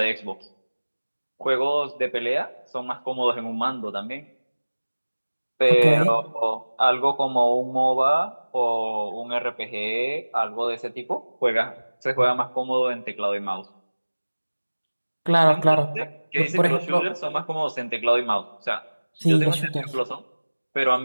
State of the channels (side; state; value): both; inverted; correlation -1.00